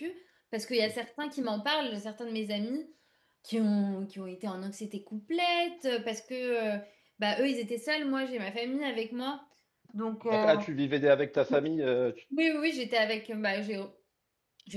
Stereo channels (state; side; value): identical; both; correlation 1.00